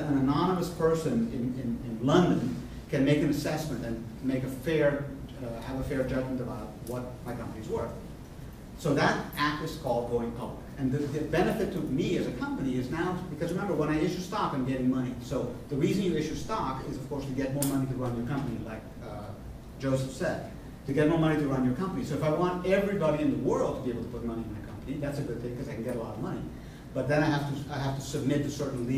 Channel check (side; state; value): both; identical; correlation 1.00